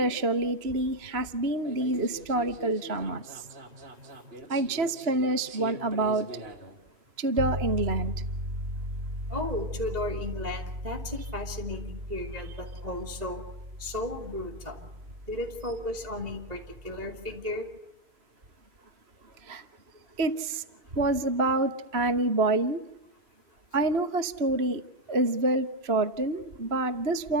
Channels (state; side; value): late; left; 2.9 ms